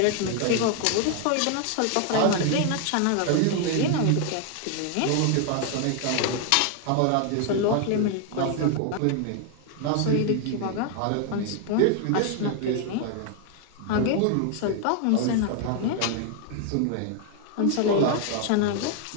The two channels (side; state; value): both; different; correlation 0.00